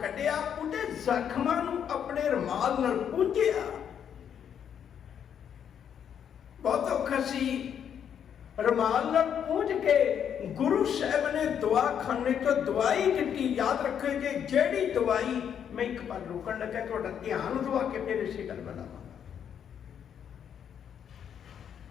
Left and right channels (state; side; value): quieter; right; 8.5 dB